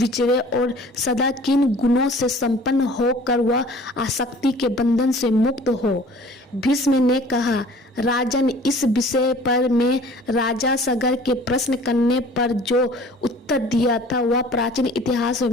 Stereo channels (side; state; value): both; normal; correlation 0.49